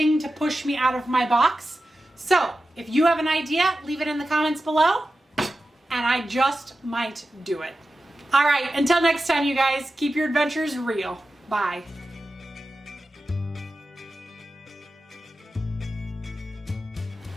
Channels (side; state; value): both; normal; correlation 0.93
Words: to push me out of my box. So if you have an idea, leave it in the comments below, and I just might do it. All right, until next time, you guys, keep your adventures real. Bye.